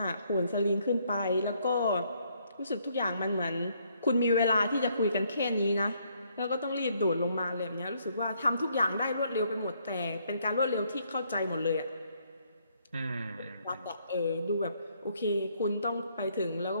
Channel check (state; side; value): inverted; both; correlation -0.70